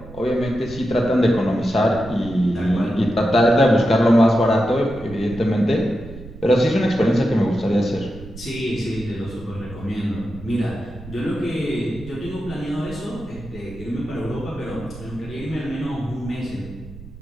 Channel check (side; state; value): right; noise; rumble, 15 dB below the sound